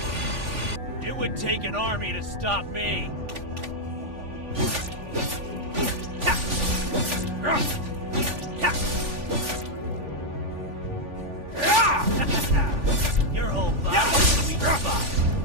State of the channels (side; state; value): left; late; 3.5 ms